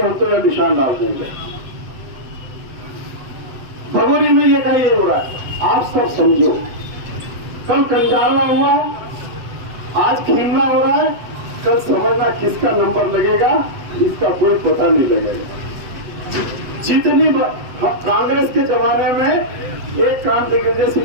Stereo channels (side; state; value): left; late; 7.9 ms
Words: हम तो यह निशान डाल देंगे। भगोरी में ये कहीं हो रहा है, आप सब समझो। कल कंजाला हुआ, आज खीमला हो रहा है, कल समझना किसका नंबर लगेगा इसका कोई पता नहीं लगेगा। जितनी कांग्रेस के जमाने में एक काम दिग्विजय